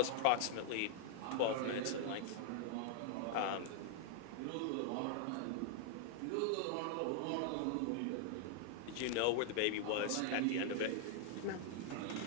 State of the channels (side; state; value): both; different; correlation 0.00